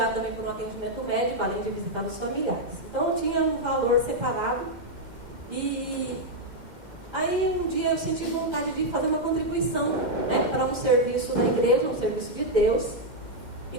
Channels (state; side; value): late; left; 2.1 ms